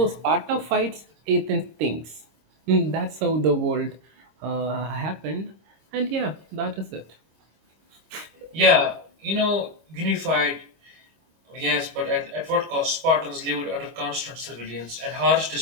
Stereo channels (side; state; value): left; late; 25 ms